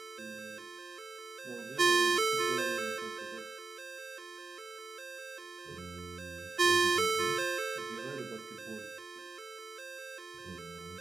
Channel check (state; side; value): quieter; left; 3.8 dB